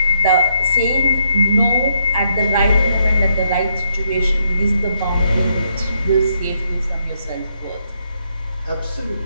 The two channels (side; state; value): both; inverted; correlation -0.75